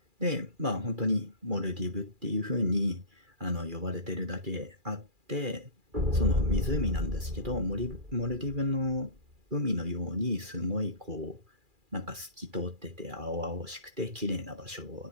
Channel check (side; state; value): left; late; 2.4 ms